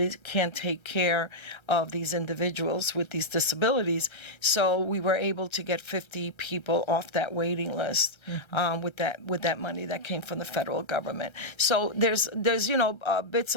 can't take care of these individuals with these disabilities. So we were able to get 50 people off that waiting list with that money that came from the federal government. So there's bits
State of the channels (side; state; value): right; late; 1.3 ms